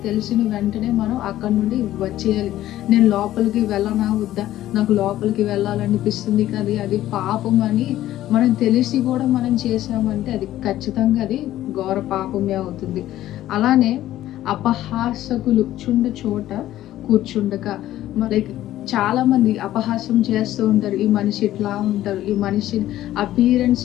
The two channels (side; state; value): right; quieter; 13.8 dB